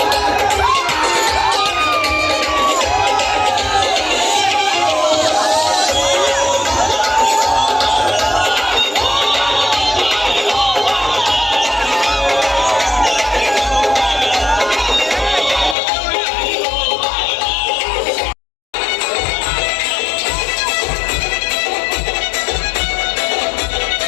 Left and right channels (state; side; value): drops out; right; at 15.8 s